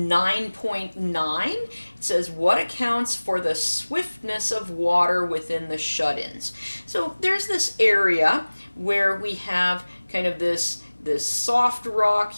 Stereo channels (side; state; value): both; inverted; correlation -1.00